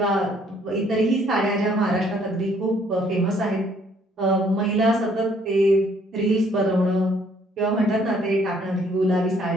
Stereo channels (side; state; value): both; normal; correlation 0.64